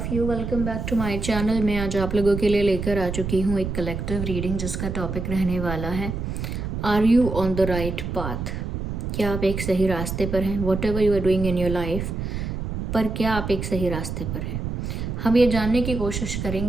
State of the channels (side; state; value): right; noise; rumble, 4 dB below the sound